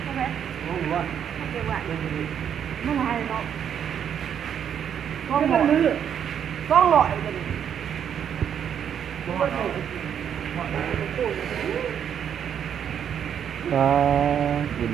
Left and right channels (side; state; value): left; quieter; 8.7 dB